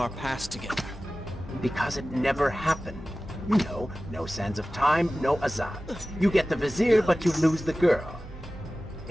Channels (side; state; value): both; normal; correlation 0.96